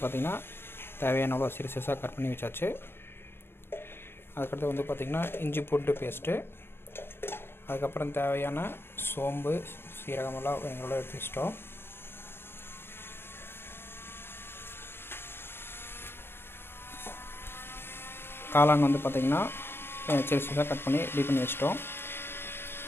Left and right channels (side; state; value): right; late; 0.11 ms